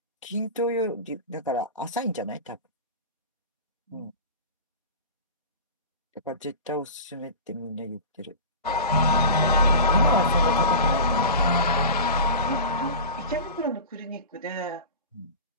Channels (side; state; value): both; inverted; correlation -0.32